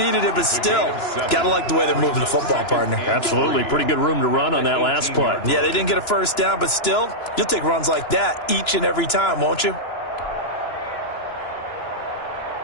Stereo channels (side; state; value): right; late; 2.9 ms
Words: it, but still, gotta like the way they're moving the football, partner. Absolutely. Pretty good room to run on that last play. Yeah, they didn't get a 1st down, but still, you'll take runs like that each and every time, won't you?